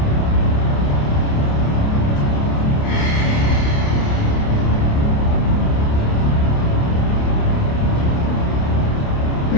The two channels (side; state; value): right; late; 28 ms